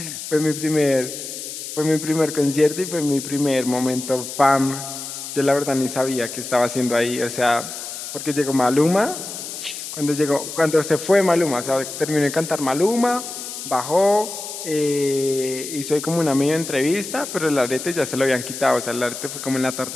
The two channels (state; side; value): noise; left; hiss, 8 dB below the sound